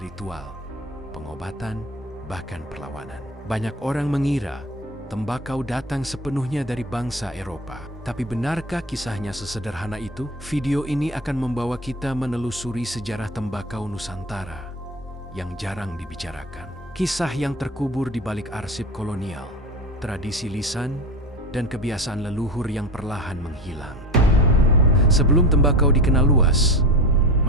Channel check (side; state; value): both; normal; correlation 0.28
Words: ritual, pengobatan, bahkan perlawanan. Banyak orang mengira tembakau datang sepenuhnya dari bangsa Eropa. Tapi benarkah kisahnya sesederhana itu? Video ini akan membawa kita menelusuri sejarah tembakau Nusantara yang jarang dibicarakan. Kisah yang terkubur di balik arsip kolonial, tradisi lisan, dan kebiasaan leluhur yang perlahan menghilang. Sebelum tembakau dikenal luas,